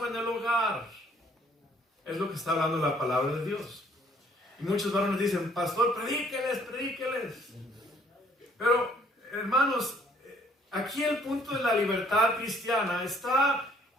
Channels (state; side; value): normal; both; correlation 0.62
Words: en el hogar. Es lo que está hablando la palabra de Dios. Y muchos varones dicen, pastor, predíqueles. Pero, hermanos, aquí el punto de la libertad cristiana está